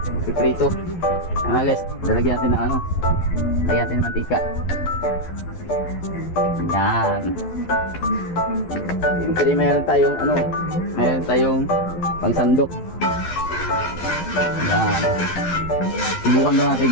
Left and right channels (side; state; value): right; late; 12 ms